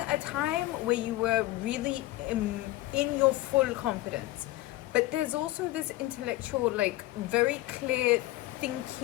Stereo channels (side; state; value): right; quieter; 17.6 dB